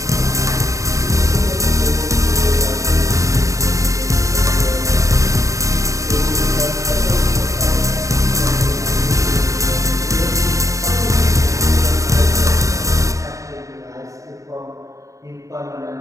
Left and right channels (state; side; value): late; left; 0.16 ms